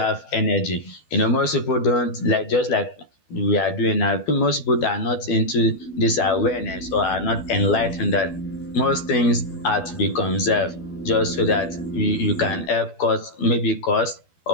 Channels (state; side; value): late; right; 12 ms